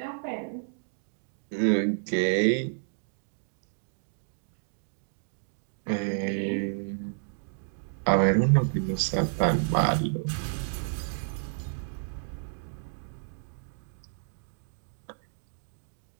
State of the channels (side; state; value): left; silent; digital silence